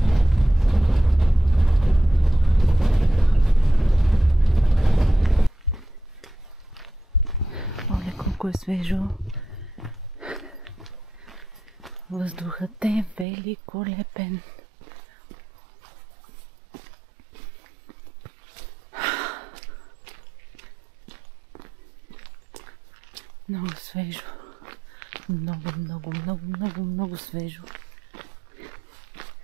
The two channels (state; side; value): drops out; left; at 13.2 s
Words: Колко е свежо. Въздухът е великолепен. Много свежо. Много свежо.